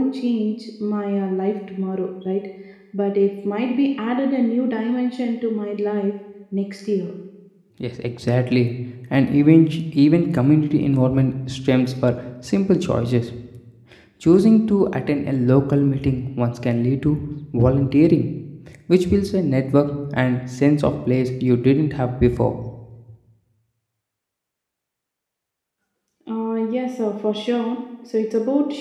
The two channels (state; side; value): identical; both; correlation 1.00